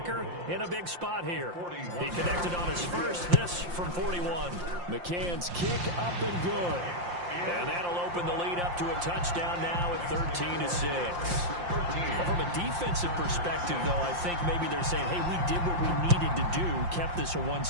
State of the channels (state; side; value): late; left; 5.7 ms